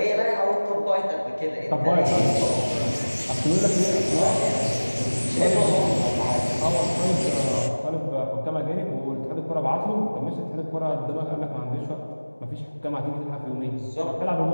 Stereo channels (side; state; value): both; inverted; correlation -1.00